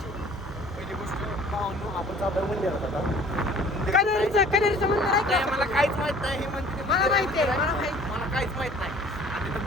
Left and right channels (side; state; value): both; normal; correlation 0.51